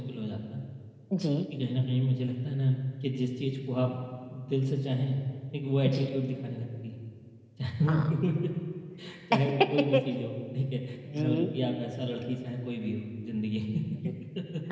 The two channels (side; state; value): both; identical; correlation 1.00